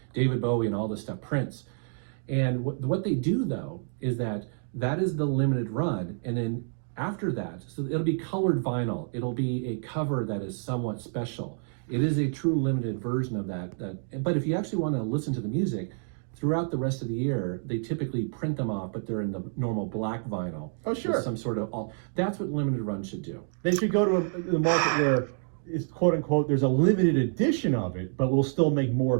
David Bowie and all this stuff, Prince. And what they do though is that is the limited run, and then after that, so it'll be colored vinyl. It'll be a cover that is somewhat special. It is a true limited version of that. But if you actually want to listen to the music, throughout the rest of the year, they typically print them off, but they're in the normal black vinyl. Oh, sure. Some sort of that's what limited run should do. They should go to the market where it's quote unquote there's a limited edition of it, but we'll still make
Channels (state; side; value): silent; left; 59 dB below the other